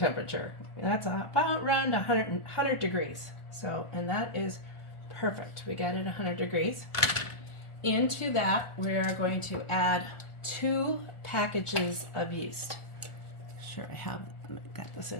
That's about around 100 degrees. So, and that is perfect. We got it 100 degrees. Into that, we are going to add 2 packages of yeast. Sure, I got this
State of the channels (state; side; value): late; right; 1.4 ms